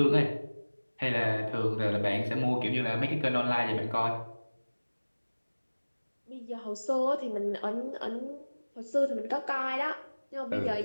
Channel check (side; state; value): both; inverted; correlation -1.00